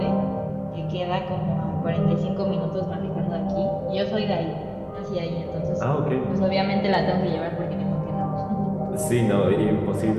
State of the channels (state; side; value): identical; both; correlation 1.00